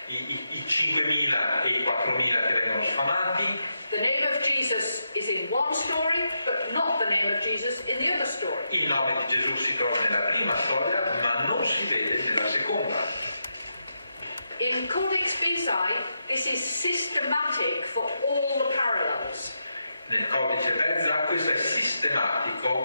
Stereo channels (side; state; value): both; inverted; correlation -0.85